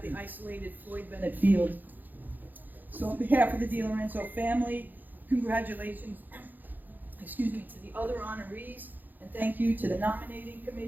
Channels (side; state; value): left; late; 0.086 ms